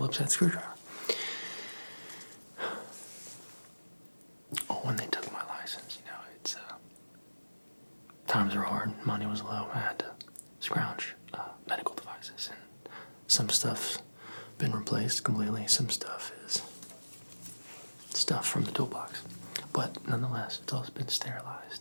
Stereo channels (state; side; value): inverted; both; correlation -1.00